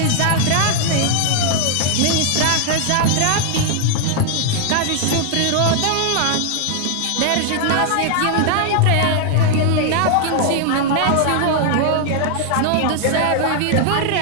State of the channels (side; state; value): both; different; correlation 0.00